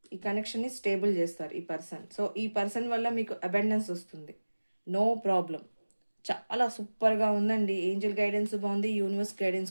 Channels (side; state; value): both; inverted; correlation -1.00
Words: ఈ కనెక్షన్ని స్టేబుల్ చేస్తారు ఈ పర్సన్. సో ఈ పర్సన్ వల్ల మీకు అబండెన్స్ వస్తుంది, నో ప్రాబ్లం. చాలా సూపర్గా ఉందండి. ఏంజల్ గైడెన్స్ బాగుంది, యూనివర్స్